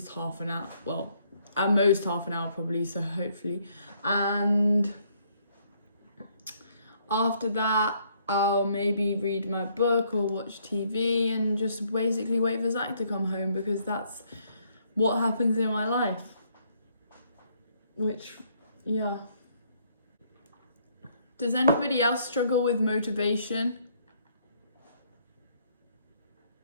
half an hour. Well, at most half an hour probably, so hopefully. And after that, I'll maybe read my book or watch TV and just basically wait for Zach to come home, because that's what happens in my life. Which, yeah. Does anybody else struggle with motivation?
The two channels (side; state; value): both; inverted; correlation -0.68